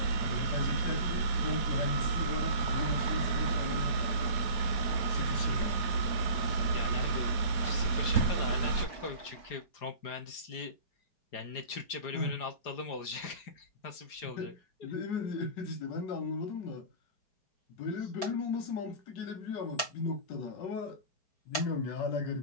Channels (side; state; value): right; late; 4.9 ms